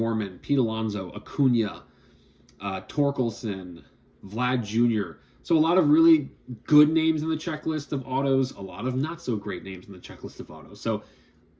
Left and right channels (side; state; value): both; identical; correlation 1.00